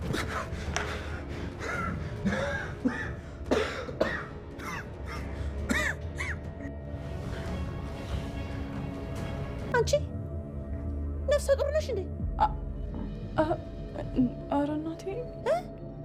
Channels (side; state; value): both; identical; correlation 1.00